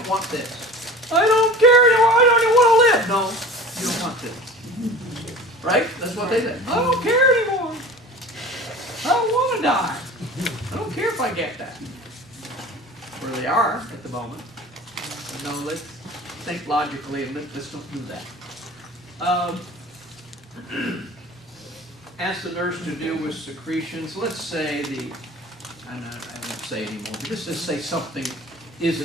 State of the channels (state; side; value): normal; both; correlation 0.40